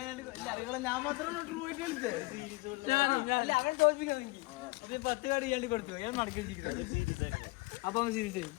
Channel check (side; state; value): right; quieter; 22.8 dB